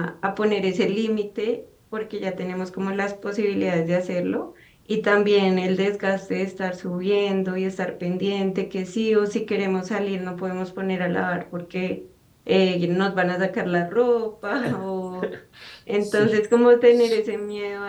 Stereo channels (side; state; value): both; identical; correlation 1.00